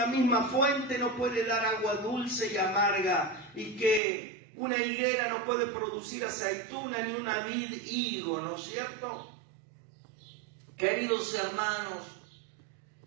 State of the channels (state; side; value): drops out; left; at 4.0 s